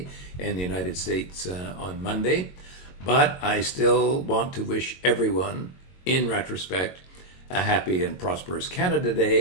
and the United States on Monday. But I still want to wish everyone, in retrospect, a happy and prosperous Canada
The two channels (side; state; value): right; late; 22 ms